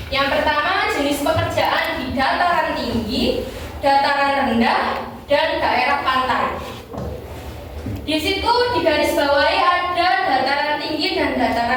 Yang pertama, jenis pekerjaan di dataran tinggi, dataran rendah, dan daerah pantai. Di situ digarisbawahi ada dataran tinggi dan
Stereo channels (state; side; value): identical; both; correlation 1.00